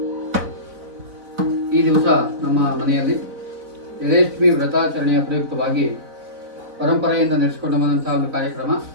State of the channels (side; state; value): left; late; 4.0 ms